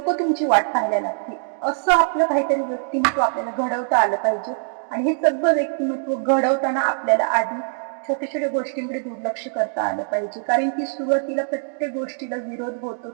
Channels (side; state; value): left; silent; digital silence